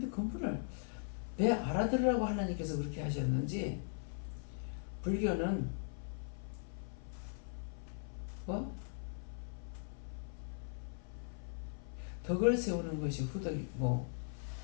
그분을 내 알아들으라고 하나님께서 그렇게 하셨는지, 불교는 뭐 덕을 세우는 것이 후덕이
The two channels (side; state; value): right; silent; 51 dB below the other